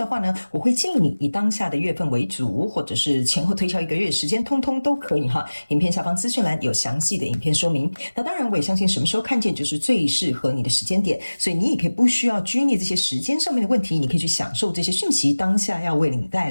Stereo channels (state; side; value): inverted; both; correlation -1.00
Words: 话呢，我会建议你以当下的月份为主，或者是前后推敲1个月时间，通通都可以哈。影片下方资讯栏有详细的影片说明。那当然，我也相信什么时候看见就是最适合你的时间点，所以你也可以不需要拘泥这些时间上面的问题，你可以去享受这些讯息当下要为你带